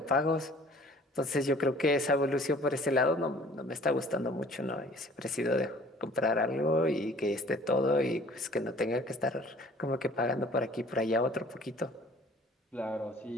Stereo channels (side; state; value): both; normal; correlation 0.52